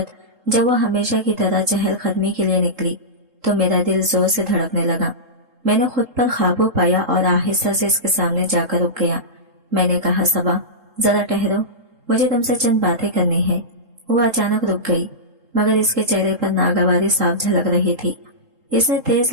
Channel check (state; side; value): late; left; 3.7 ms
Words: जब वो हमेशा की तरह चहल कदमी के लिए निकली तो मेरा दिल जोर से धड़कने लगा। मैंने खुद पर काबू पाया और आहिस्ता से इसके सामने जाकर रुक गया। मैंने कहा, सबा जरा ठहरो, मुझे तुमसे चंद बातें करनी है। वो अचानक रुक गई, मगर इसके चेहरे पर नागवारी साफ झलक रही थी। इसने